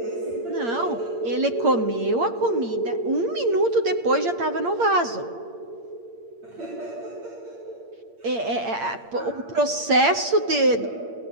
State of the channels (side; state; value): left; late; 8.7 ms